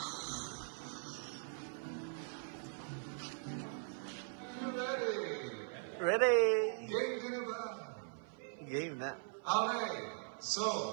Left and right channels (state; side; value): silent; left; 51 dB below the other